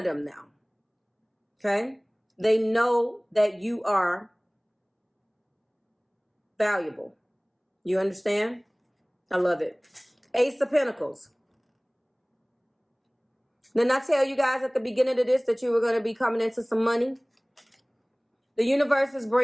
them now. Okay, they know that you are valuable. You understand? I love it. Ace of Pentacles. Didn't I tell you guys at the beginning of this that you were going to be coming into some money? The universe is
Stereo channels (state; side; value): identical; both; correlation 1.00